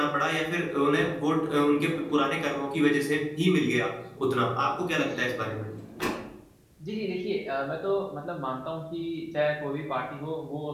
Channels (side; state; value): both; identical; correlation 1.00